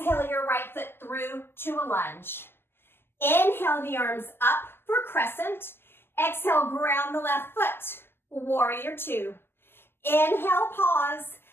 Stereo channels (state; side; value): late; right; 0.11 ms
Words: your right foot through to a lunge. Inhale the arms up for crescent. Exhale, ground the left foot. Warrior two. Inhale, pause.